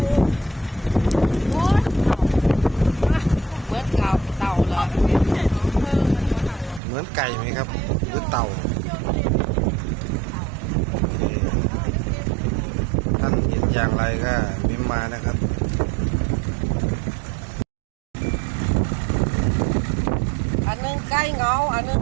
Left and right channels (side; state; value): left; drops out; at 6.8 s